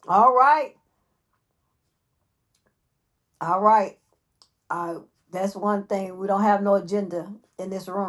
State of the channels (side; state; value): both; identical; correlation 1.00